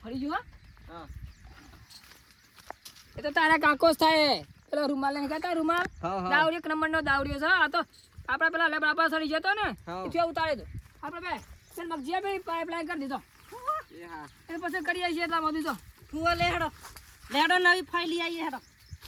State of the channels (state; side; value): identical; both; correlation 1.00